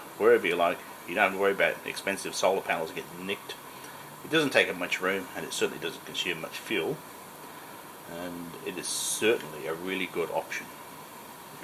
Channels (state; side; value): identical; both; correlation 1.00